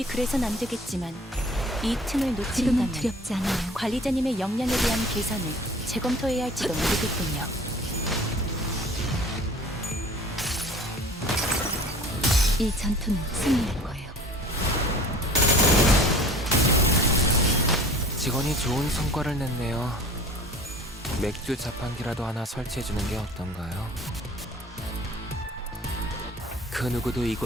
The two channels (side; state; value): both; normal; correlation 0.46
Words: 그래선 안 되겠지만 이 틈을 지금은 놓친다면 두렵지 않아요. 관리자님의 역량에 대한 계산을 재검토해야 할지도 모르겠군요. 이 전투는 승리할 거예요. 직원이 좋은 성과를 냈네요. 맥주 자판기라도 하나 설치해주는 게 어떤가요? 그 누구도